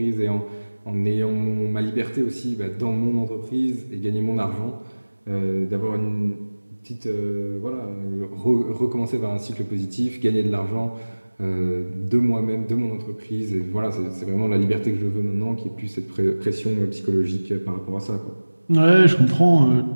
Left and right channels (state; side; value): inverted; both; correlation -1.00